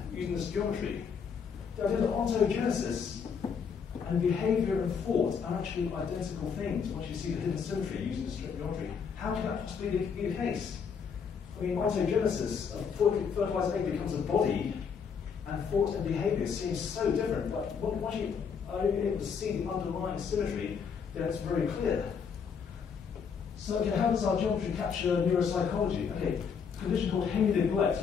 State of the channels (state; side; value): quieter; right; 6.4 dB